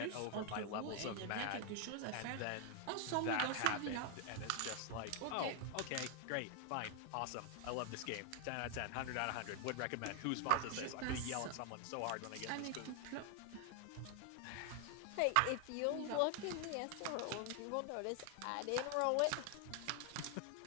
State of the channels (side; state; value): both; different; correlation 0.00